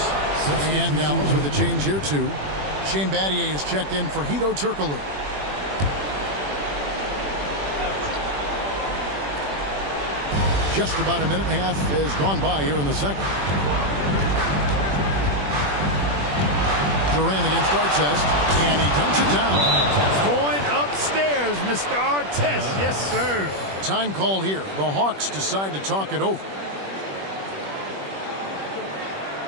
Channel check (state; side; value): late; left; 21 ms